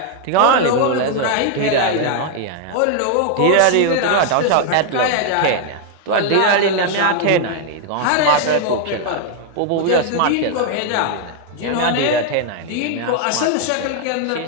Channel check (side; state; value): both; different; correlation 0.00